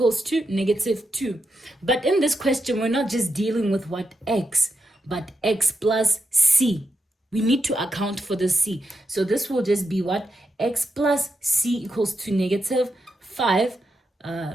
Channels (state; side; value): normal; both; correlation 0.85